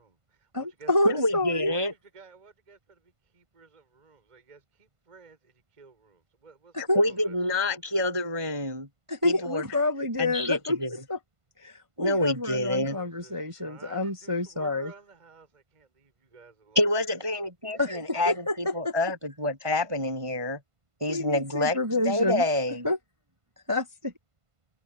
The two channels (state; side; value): late; left; 1.5 ms